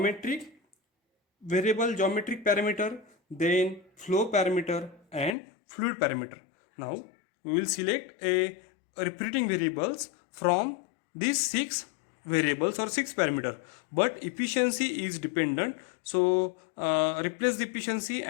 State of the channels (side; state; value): right; drops out; at 5.4 s